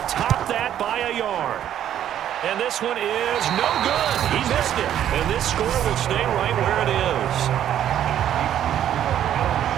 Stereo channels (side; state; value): left; quieter; 10.7 dB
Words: top that by a yard. And this one is no good. He missed it. And this score will stay right where it is.